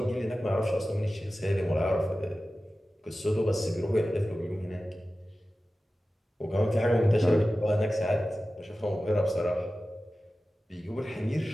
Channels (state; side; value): normal; both; correlation 0.95